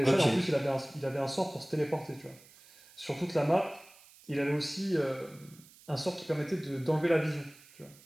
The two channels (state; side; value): noise; right; hiss, 24 dB below the sound